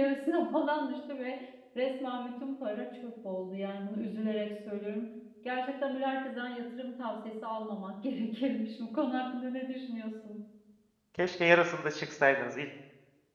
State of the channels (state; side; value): identical; both; correlation 1.00